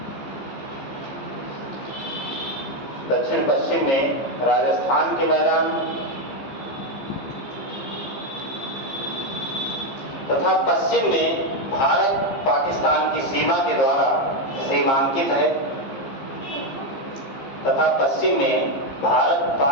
दक्षिण पश्चिम में राजस्थान के मैदान तथा पश्चिम में भारत पाकिस्तान की सीमा के द्वारा सीमांकित है, तथा पश्चिम में भारत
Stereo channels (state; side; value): late; right; 15 ms